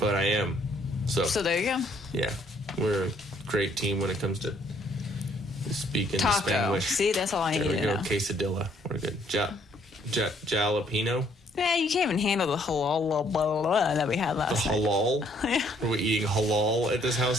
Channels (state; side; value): normal; both; correlation 0.65